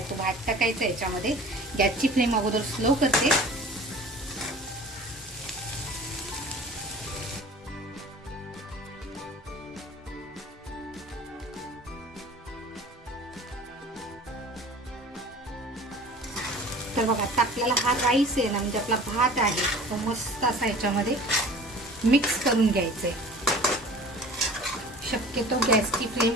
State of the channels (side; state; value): both; normal; correlation 0.44